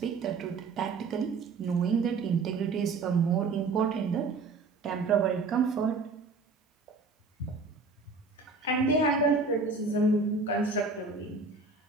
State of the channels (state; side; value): quieter; left; 4.2 dB